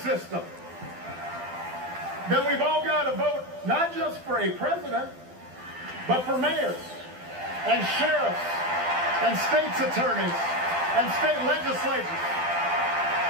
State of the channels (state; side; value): late; left; 12 ms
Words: system, then we've all got to vote not just for a president, but for mayors and sheriffs and state's attorneys and state legislatures.